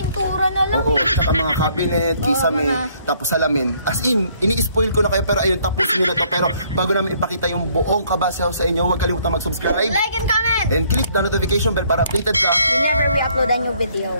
na lang. Oo, saka mga cabinet, kisame, tapos salamin. As in, ini-spoil ko na kayo pero ayun, tapusin nyo na to. Pero bago namin ipakita yung buong Kabasi House sa inyo, huwag kalimutan mag-subscribe, like and comment, and click the notification bell para updated ka whenever we upload a new video.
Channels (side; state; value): both; inverted; correlation -0.64